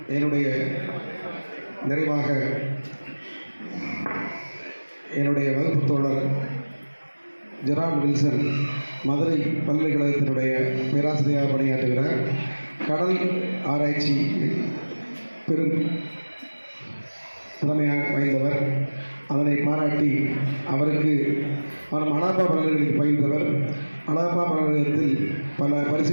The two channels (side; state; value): both; inverted; correlation -1.00